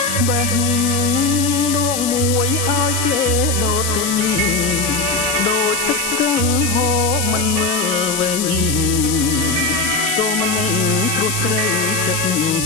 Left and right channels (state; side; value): noise; left; hiss, 3 dB below the sound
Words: បេះដងមួយឲ្យគេដូរទិញដូចទឹកស្ទឹងហូរមិនមើលវិញទូមិនព្រោះស្រីចិត្ត